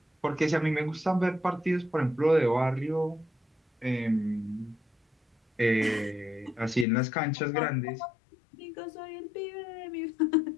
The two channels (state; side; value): drops out; right; at 6.9 s